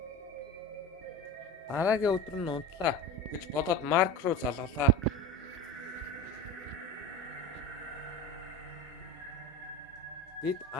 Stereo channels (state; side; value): normal; both; correlation 0.29